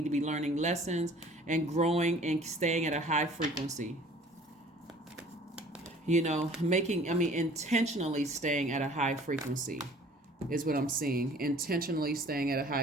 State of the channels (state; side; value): normal; both; correlation 0.51